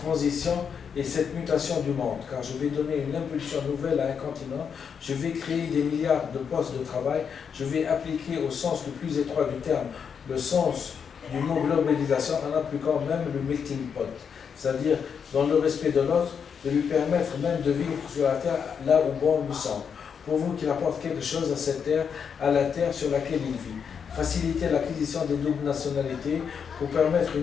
et cette mutation du monde, car je vais donner une impulsion nouvelle à un continent, je vais créer des milliards de postes de travail, je vais appliquer au sens le plus étroit du terme le sens du mot globalisation en appliquant même le melting pot, c'est-à-dire dans le respect de l'autre, de lui permettre même de vivre sur la terre là où bon lui semble. Pour vous qu'il apporte quelque chose à cette terre, à la terre sur laquelle il vit. Faciliter l'acquisition des doubles nationalités pour permettre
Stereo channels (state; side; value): quieter; right; 6.9 dB